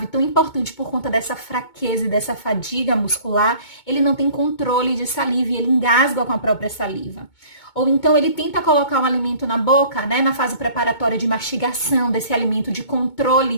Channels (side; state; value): right; late; 2.2 ms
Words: tão importante por conta dessa fraqueza e dessa fadiga muscular, ele não tem controle de saliva e ele engasga com a própria saliva. Ou então ele tenta colocar um alimento na boca, né, na fase preparatória de mastigação desse alimento, de